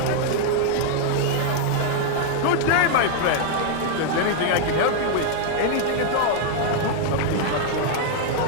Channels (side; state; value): both; different; correlation 0.00